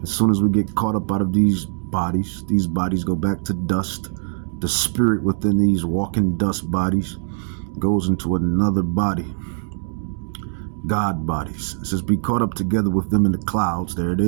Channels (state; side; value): silent; left; digital silence